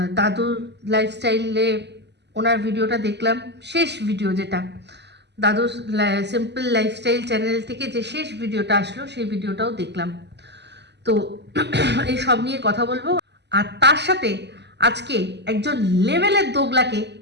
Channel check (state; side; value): late; left; 0.50 ms